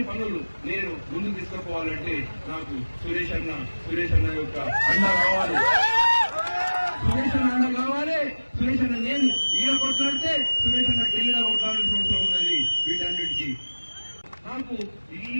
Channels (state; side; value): inverted; both; correlation -1.00